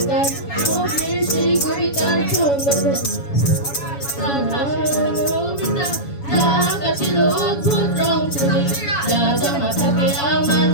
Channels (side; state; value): right; late; 7.1 ms